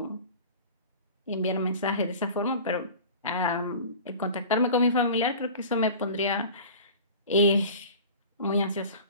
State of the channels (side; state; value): both; inverted; correlation -0.39